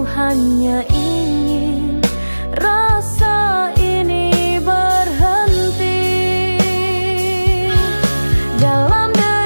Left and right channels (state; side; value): inverted; both; correlation -1.00